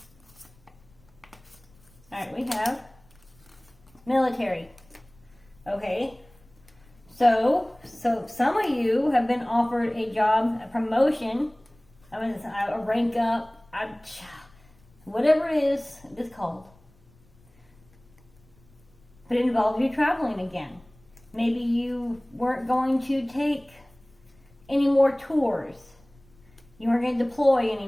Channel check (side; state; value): left; noise; rumble, 29 dB below the sound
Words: Alright, we have military. Okay. So some of you have been offered a job, a promotion, a rank up, whatever it is it's called. But it involves you traveling again. Maybe you weren't going to take any more tours. You weren't going to deploy